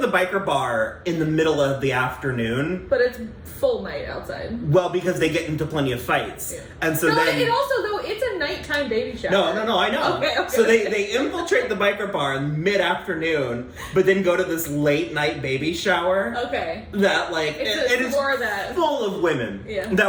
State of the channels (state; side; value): identical; both; correlation 1.00